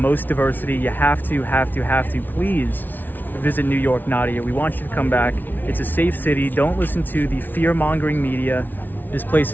diversity. You have to. Please visit New York, Nadia. We want you to come back. It's a safe city. Don't listen to the fear-mongering media. This place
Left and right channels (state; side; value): late; right; 0.087 ms